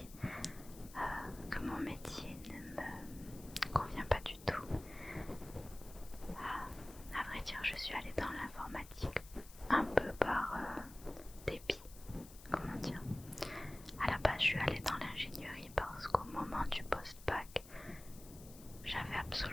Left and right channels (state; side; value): noise; left; hiss, 19 dB below the sound